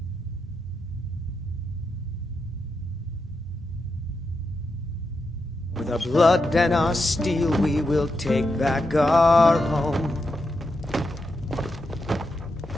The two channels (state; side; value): normal; both; correlation 0.86